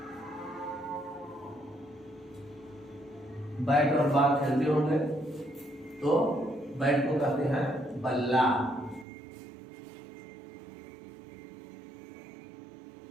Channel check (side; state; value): left; drops out; at 9.1 s